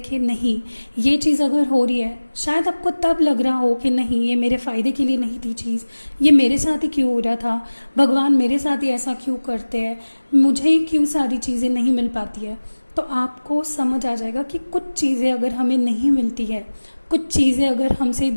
कि नहीं, ये चीज़ अगर हो रही है, शायद आपको तब लग रहा हो कि नहीं, ये मेरे फ़ायदे के लिए नहीं थी चीज़, ये मेरे साथ ही क्यों हो रहा था, भगवान मेरे साथ ही ऐसा क्यों करते हैं, मुझे ही क्यों सारी चीज़ें नहीं मिल पाती है। तो आपको समझ आ जाएगा कि कुछ चीज़ें अगर हमें नहीं मिलती है, कुछ चीज़ें अगर हमसे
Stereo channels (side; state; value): both; inverted; correlation -1.00